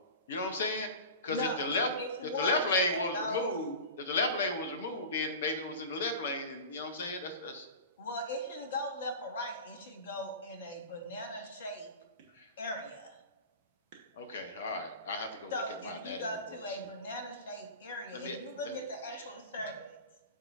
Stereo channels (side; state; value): both; inverted; correlation -0.32